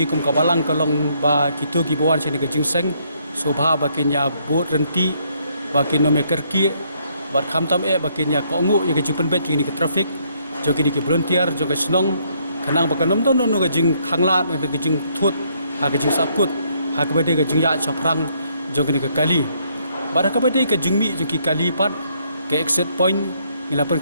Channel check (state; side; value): inverted; both; correlation -0.70